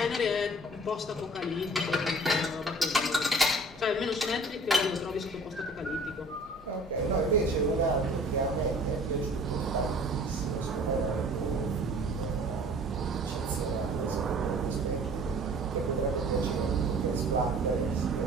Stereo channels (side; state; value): both; normal; correlation 0.48